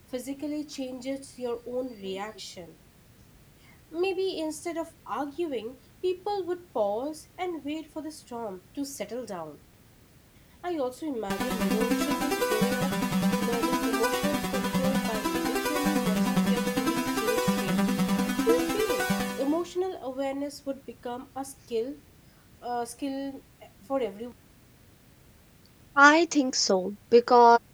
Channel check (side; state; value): both; identical; correlation 1.00